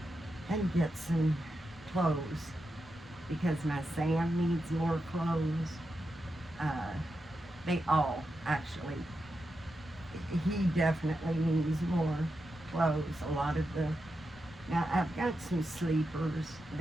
and get some clothes because my Sam needs more clothes. They all actually. He definitely needs more clothes. Now I've got some sleepers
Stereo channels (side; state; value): both; normal; correlation 0.88